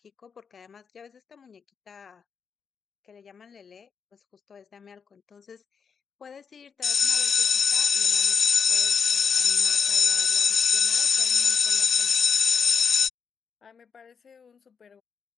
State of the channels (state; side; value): quieter; right; 6.2 dB